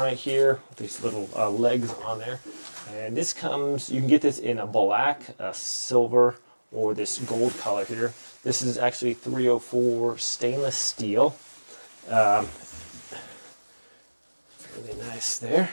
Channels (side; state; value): both; inverted; correlation -1.00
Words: here with these little legs on there. And this comes, you can get this in a black, a silver, or this gold color here. This is actually 304 stainless steel. Really nice there.